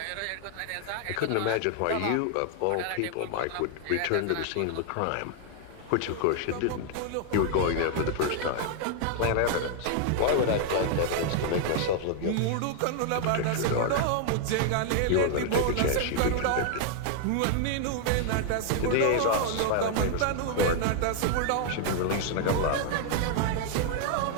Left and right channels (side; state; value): both; different; correlation 0.00